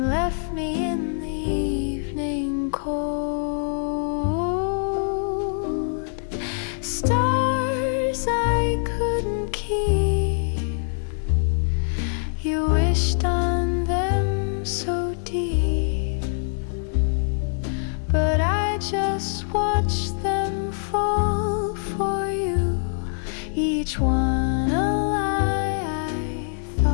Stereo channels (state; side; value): silent; right; digital silence